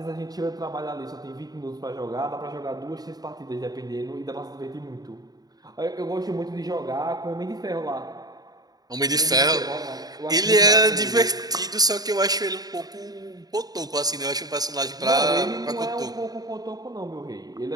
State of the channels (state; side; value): late; left; 0.19 ms